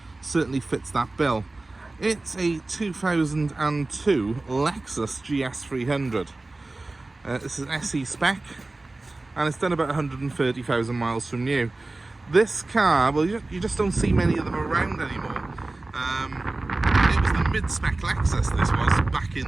certainly fits that bill. It's a 2002 Lexus GS300. This is an SE spec, and it's done about 130,000 miles from new. This car, well, you just don't see many of them around anymore. It was the mid-spec Lexus, this was, back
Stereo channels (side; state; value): left; quieter; 3.1 dB